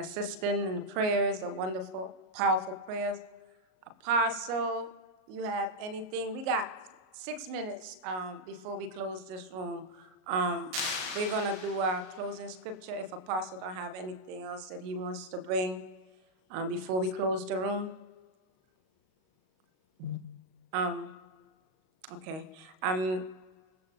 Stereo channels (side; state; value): left; late; 37 ms